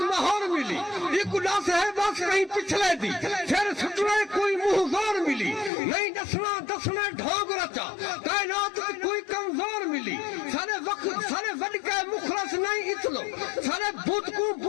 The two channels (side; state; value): right; drops out; at 5.7 s